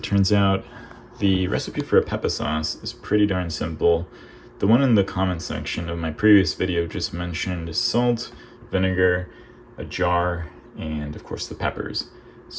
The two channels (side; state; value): both; identical; correlation 1.00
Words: turns out, the recipe for a Peppa sauce is pretty darn simple. The one in the comment section of my previous video just mentioned salt, vinegar, a jar, and of course the peppers.